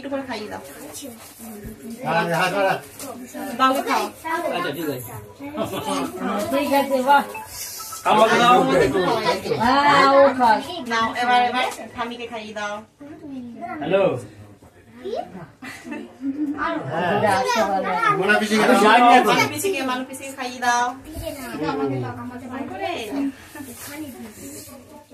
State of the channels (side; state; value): both; identical; correlation 1.00